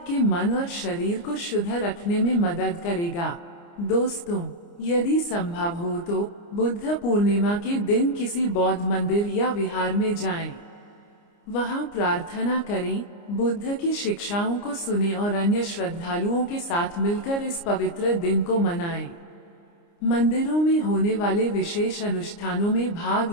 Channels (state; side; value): late; right; 29 ms